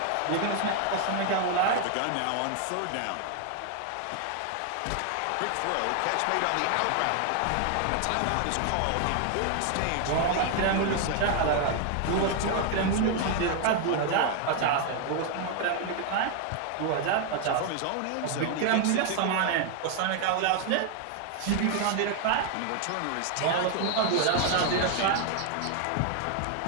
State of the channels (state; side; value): different; both; correlation 0.00